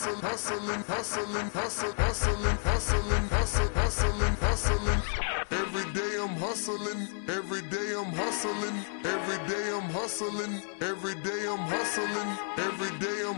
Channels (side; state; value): right; silent; 57 dB below the other